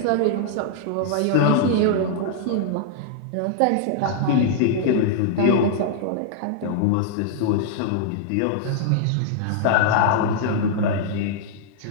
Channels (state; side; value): different; both; correlation -0.01